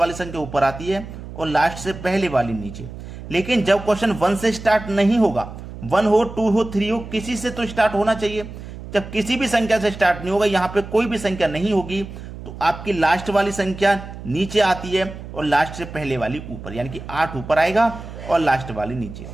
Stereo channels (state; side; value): noise; right; hum, 12 dB below the sound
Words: संख्या ऊपर आती है और लास्ट से पहले वाली नीचे। लेकिन जब क्वेश्चन 1 से स्टार्ट नहीं होगा, 1 हो 2 हो 3 हो, किसी से तो स्टार्ट होना चाहिए। जब किसी भी संख्या से स्टार्ट नहीं होगा, यहां पे कोई भी संख्या नहीं होगी, तो आपकी लास्ट वाली संख्या नीचे आती है और लास्ट से पहले वाली ऊपर, यानी कि 8 ऊपर आएगा और लास्ट वाली नीचे।